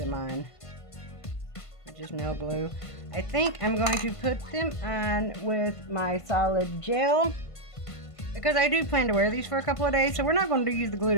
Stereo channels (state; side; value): late; right; 1.5 ms